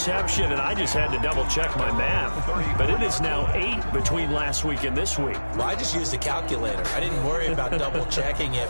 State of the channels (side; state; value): both; inverted; correlation -1.00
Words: and I just had to double-check my math. But it is now 8 between last week and this week. Well, I just used a calculator. I didn't worry about double-checking it.